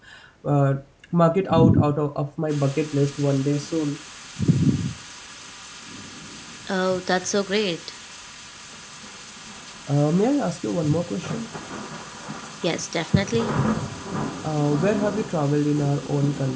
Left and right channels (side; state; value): both; identical; correlation 1.00